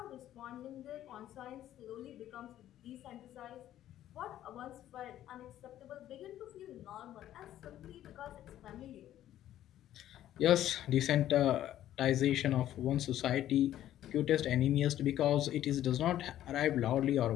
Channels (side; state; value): right; quieter; 12.4 dB